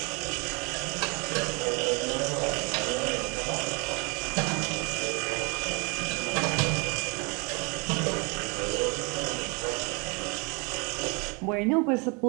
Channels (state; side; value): quieter; left; 31.6 dB